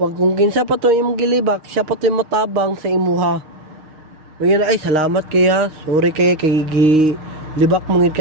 kinsa pa to imong gilibak, siya pa to matabang sa imuha. Ngayon ay salamat kaya, sorry kay libak mongid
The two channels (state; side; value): late; left; 6.4 ms